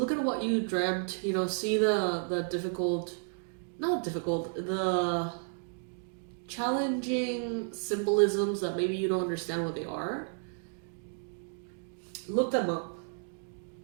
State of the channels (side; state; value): left; silent; 56 dB below the other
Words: at what you dreamt, you know, see the challenging symbolisms that maybe you don't understand what they are. Look them up.